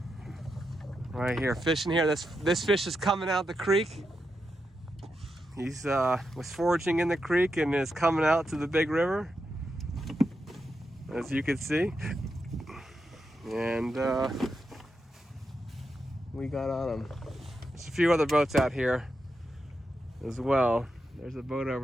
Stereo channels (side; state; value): both; normal; correlation 0.86